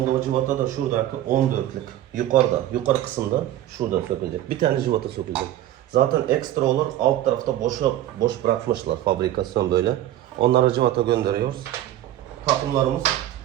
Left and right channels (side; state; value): left; quieter; 13.2 dB